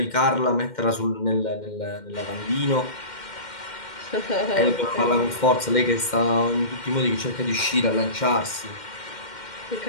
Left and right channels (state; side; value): late; right; 2.1 ms